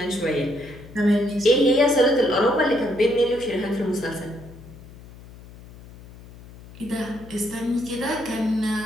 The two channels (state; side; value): noise; left; hum, 19 dB below the sound